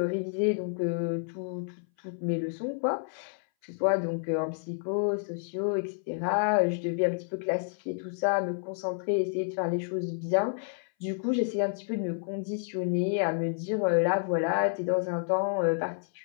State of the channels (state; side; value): silent; right; 58 dB below the other